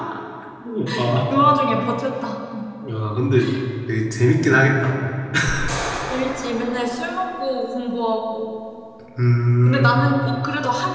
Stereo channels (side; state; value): both; identical; correlation 1.00